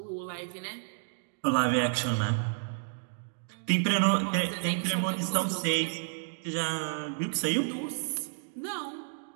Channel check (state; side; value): silent; left; digital silence